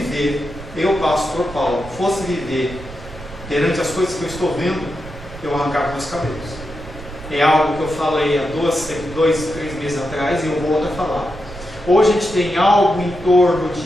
eu, pastor Paulo, fosse viver perante as coisas que eu estou vendo, eu arrancava meus cabelos. É algo que eu falei há 2-3 meses atrás e eu volto a falar. Hoje a gente tem algo em torno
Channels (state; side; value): noise; right; rumble, 15 dB below the sound